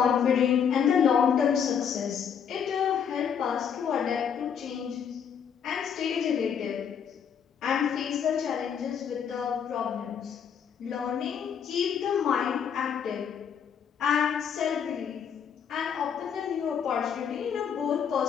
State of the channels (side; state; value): right; quieter; 7.6 dB